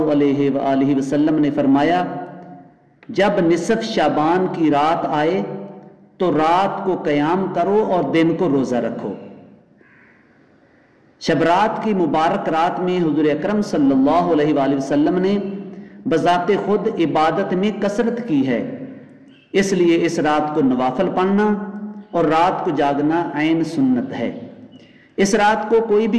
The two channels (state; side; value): identical; both; correlation 1.00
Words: علیہ وآلہ وسلم نے فرمایا، جب نصف شعبان کی رات آئے تو رات کو قیام کرو اور دن کو روزہ رکھو۔ شب رات کی مبارک رات میں حضور اکرم صلی اللہ علیہ وآلہ وسلم نے بذات خود عبادت میں کثرت کی ہے، اس لیے اس رات کو نوافل پڑھنا اور رات کو جاگنا عین سنت ہے۔ اس رات کو کوئی